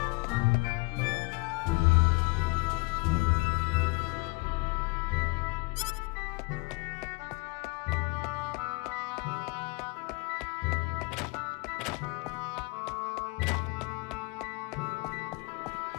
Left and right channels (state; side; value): quieter; right; 26.8 dB